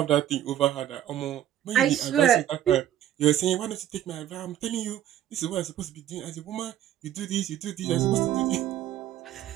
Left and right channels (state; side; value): quieter; left; 11.6 dB